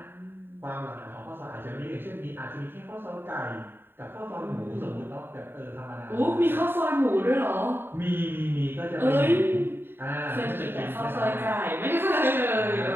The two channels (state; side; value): late; left; 0.10 ms